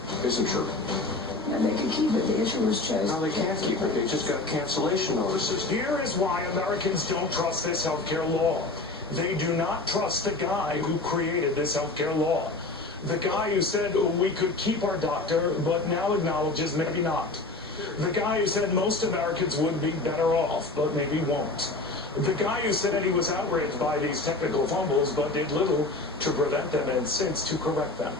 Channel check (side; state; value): right; quieter; 3.2 dB